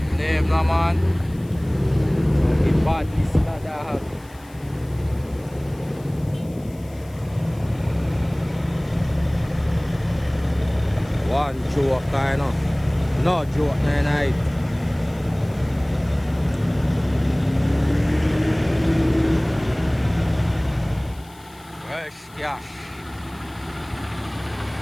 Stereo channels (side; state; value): left; noise; hiss, 26 dB below the sound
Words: Name no man. The badness that I have. One joke kind of. No joke night. Cash.